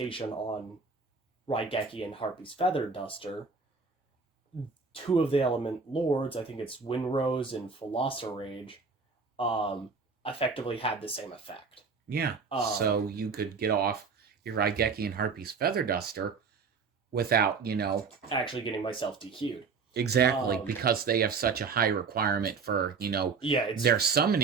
on Raigeki and Harpy's Feather Duster, two of the Element Lords, I think it's Windrose and Rage, effectively had the same effect. Yeah, so you could get off your Raigeki and Harpy's Feather Duster without, actually getting myself DQ'd. Exactly, because they have such a high requirement for, their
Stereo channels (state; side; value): quieter; left; 5.0 dB